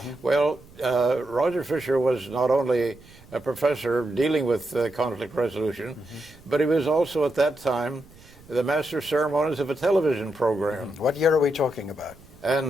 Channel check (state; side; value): noise; right; rumble, 24 dB below the sound